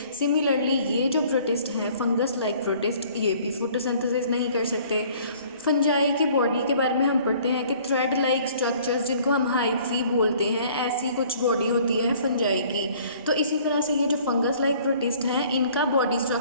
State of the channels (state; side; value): inverted; both; correlation -0.55